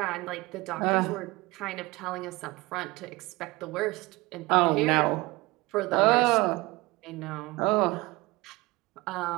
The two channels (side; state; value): left; quieter; 22.1 dB